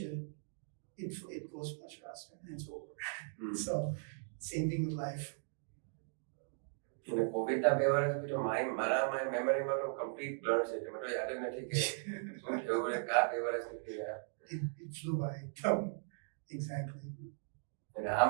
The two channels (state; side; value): silent; left; digital silence